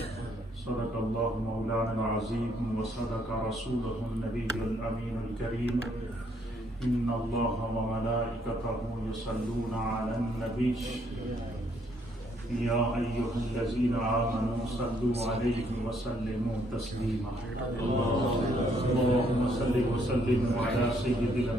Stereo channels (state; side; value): normal; both; correlation 0.69